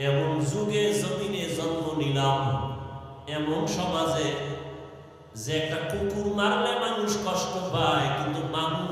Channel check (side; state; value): both; identical; correlation 1.00